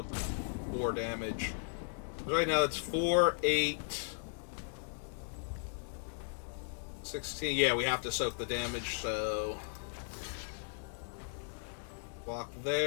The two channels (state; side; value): silent; right; 53 dB below the other